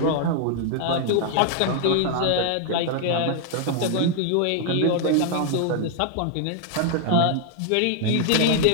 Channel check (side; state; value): both; different; correlation 0.00